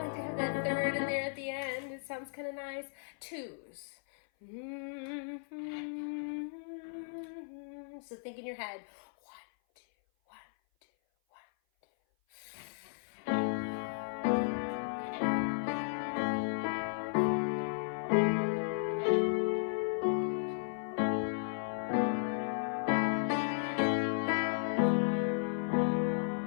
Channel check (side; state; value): right; silent; 54 dB below the other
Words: to have that third in there at the end. It sounds kind of nice. 2s. So think in your head. 1, 2, 1, 2, 1,